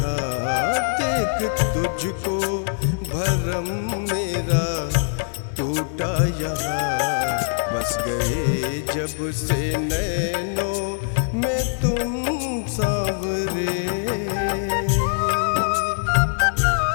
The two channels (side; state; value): right; silent; 64 dB below the other